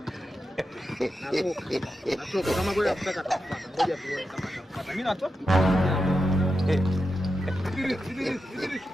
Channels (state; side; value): normal; both; correlation 0.89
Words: Natoka kama kweli anakutaka atapata. Ngoja tuone kama atapata. Mimi natoka.